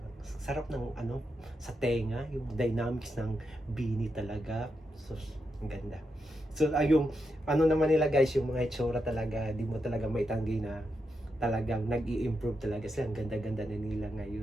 sarap ng sa tenga, yung dynamics ng Beanie talaga. So ang ganda. So yung naman nila guys, yung mga itsura talaga, di mo talaga maitanggi na talagang nag-i-improve talaga sila. Ang ganda-ganda na nila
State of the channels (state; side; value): normal; both; correlation 0.85